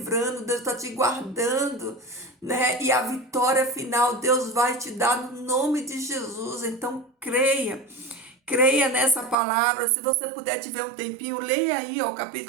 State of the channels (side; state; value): left; drops out; at 9.3 s